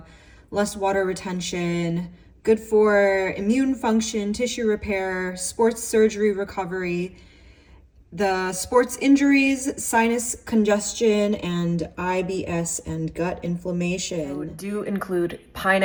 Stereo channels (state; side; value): identical; both; correlation 1.00